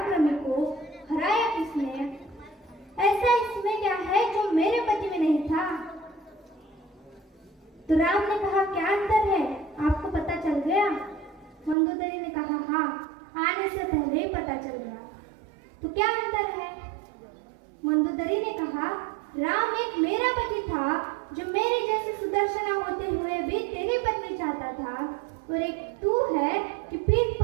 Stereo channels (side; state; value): left; drops out; at 11.8 s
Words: को हराया किसने? ऐसा इसमें क्या है जो मेरे पति में नहीं था? तो राम ने कहा, क्या अंतर है? आपको पता चल गया? मंदोदरी ने कहा, हाँ, आने से पहले ही पता चल गया। तो क्या अंतर है? मंदोदरी ने कहा, राम एक मेरा पति था जो मेरे जैसे सुदर्शना होते हुए भी तेरी पत्नी चाहता था, और एक तू है कि पीठ